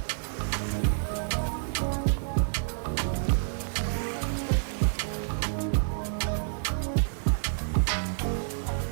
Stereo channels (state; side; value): silent; left; 56 dB below the other